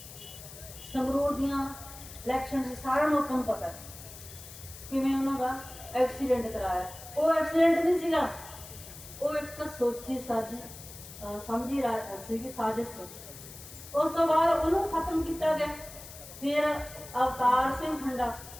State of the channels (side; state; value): left; noise; hiss, 15 dB below the sound